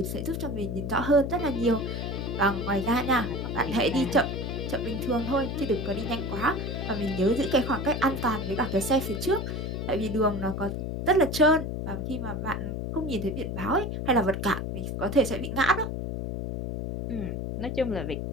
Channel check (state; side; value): noise; left; hum, 3 dB below the sound